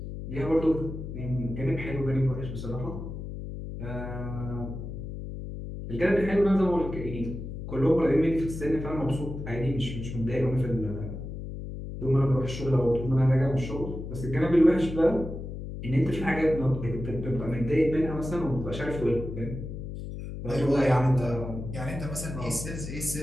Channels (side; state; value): left; noise; hum, 8 dB below the sound